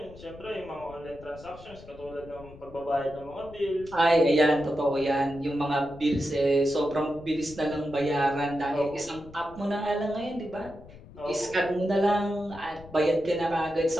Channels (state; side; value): noise; left; rumble, 19 dB below the sound